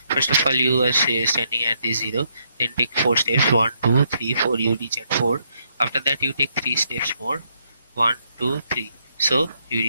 First of all, you are standing at the 0, then take 4 steps 1 2 3 4. You reach at 4. After that you take 3 steps more 1 2 3. So you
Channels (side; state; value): both; inverted; correlation -0.75